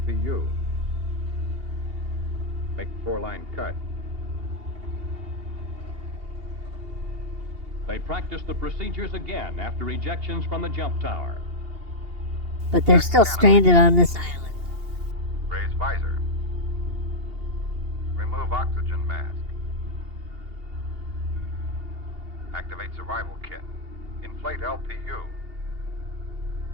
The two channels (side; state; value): left; late; 2.8 ms